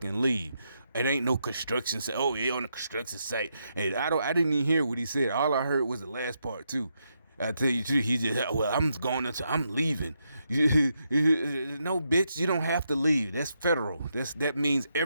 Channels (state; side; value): inverted; both; correlation -0.81